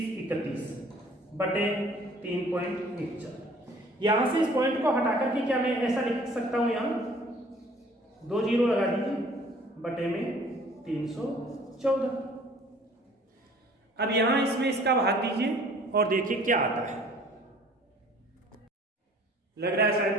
बटे 3.14। यहां से इस पॉइंट को हटाकर के क्या मैं ऐसा लिख सकता हूं, यहां 2 जीरो लगा दीजिए बटे में 314। अब यहां इसमें इसका भाग दीजिए और देखिए क्या आता है। लग रहा है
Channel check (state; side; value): normal; both; correlation 0.53